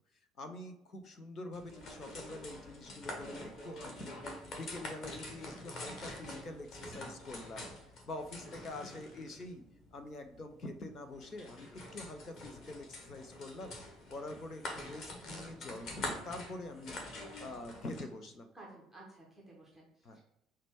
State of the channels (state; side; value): normal; both; correlation 0.61